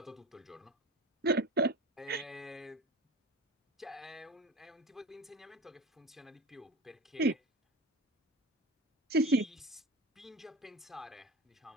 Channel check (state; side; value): normal; both; correlation 0.32